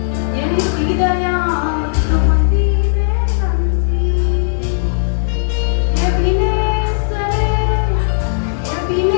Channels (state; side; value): silent; right; digital silence